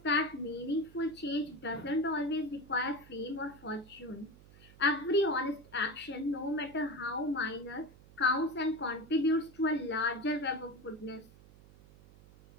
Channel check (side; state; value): right; noise; hum, 22 dB below the sound